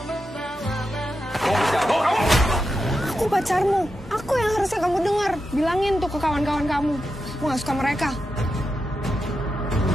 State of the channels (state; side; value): normal; both; correlation 0.88